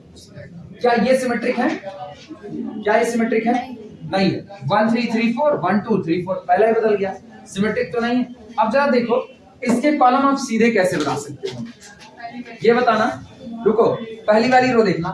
0। क्या ये सिमेट्रिक है, क्या ये सिमेट्रिक है, नहीं है। 1 3 3 4 1 2 3 4, पहला ही बदल गया, सिमेट्रिक तो नहीं है। अब जरा देखो इसके कॉलम आप सीधे कैसे बना सकते हो, ये बताना। रुको, पहली वाली रो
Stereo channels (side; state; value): both; identical; correlation 1.00